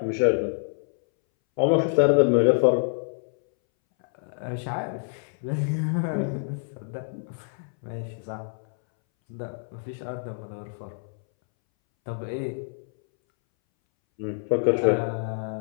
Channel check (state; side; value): silent; right; 61 dB below the other